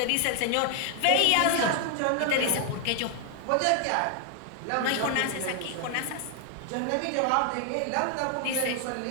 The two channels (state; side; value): different; both; correlation 0.00